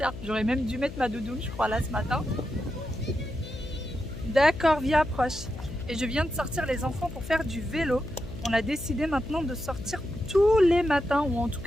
j'aurais même dû mettre ma doudoune je crois là ce matin. D'accord, viens approche. Et je viens de sortir les enfants pour faire du vélo. On a décidé maintenant de sortir tous les matins ou en tout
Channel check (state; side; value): noise; left; hum, 11 dB below the sound